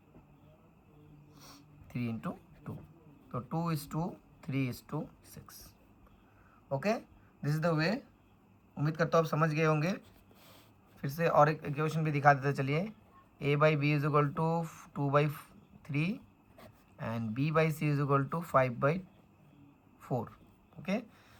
3:2, तो 2:3:6। Okay, this is the way. उम्मीद करता हूँ आप समझ गए होंगे। फिर से और एक इक्वेशन भी दिखा देते, चलिए a by B is equal to 2/3 and b by C is equal to 5/4। Okay,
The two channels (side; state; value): both; identical; correlation 1.00